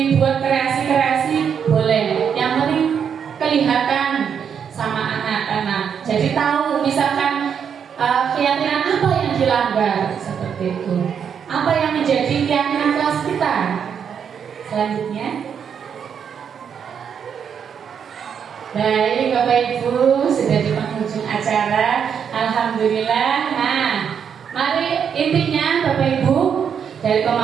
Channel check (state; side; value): quieter; left; 7.5 dB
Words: kreasi boleh. Yang penting kelihatan sama anak-anak, jadi tahu misalkan keyakinan apa yang dilanggar seperti itu, apa yang menjadi keyakinan kelas kita. Selanjutnya, baik Bapak Ibu, sudah di penghujung acara, alhamdulillah. Nah, mari intinya Bapak Ibu dari